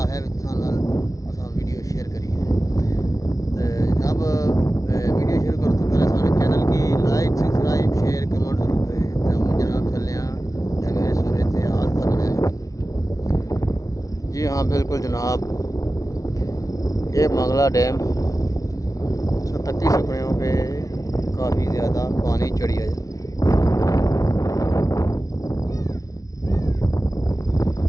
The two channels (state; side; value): late; right; 0.17 ms